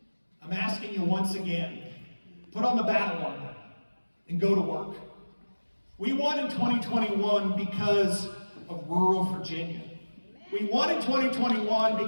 I'm asking you once again, put on the battle armor and go to work. We won in 2021 because of rural Virginia. We won in 2021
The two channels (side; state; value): both; inverted; correlation -1.00